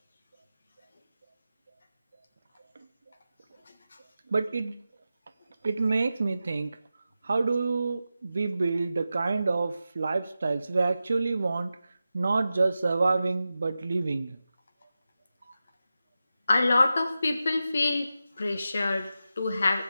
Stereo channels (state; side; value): inverted; both; correlation -0.92